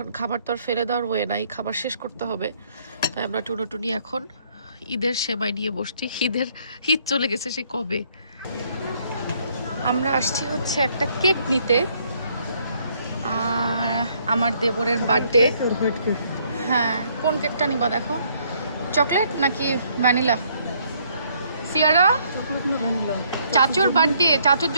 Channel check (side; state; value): both; inverted; correlation -0.67